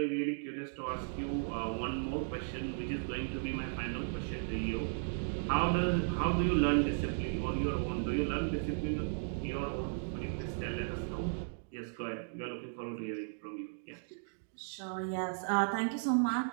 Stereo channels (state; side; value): silent; left; digital silence